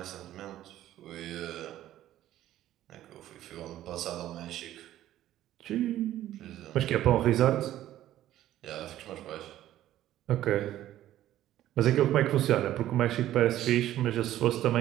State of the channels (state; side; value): quieter; left; 13.3 dB